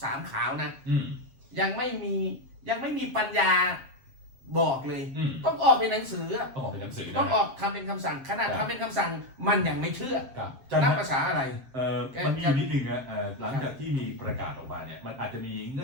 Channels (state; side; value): late; left; 7.5 ms